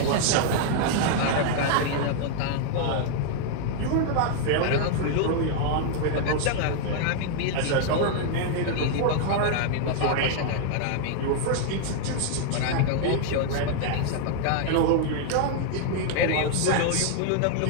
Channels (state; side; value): different; both; correlation 0.00